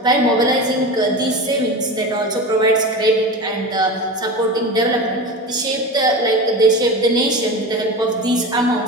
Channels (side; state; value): both; normal; correlation 0.27